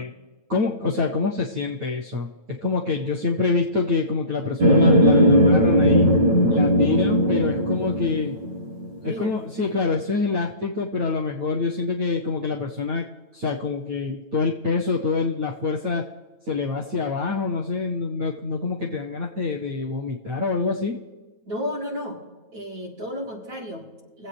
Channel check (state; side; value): late; left; 9.2 ms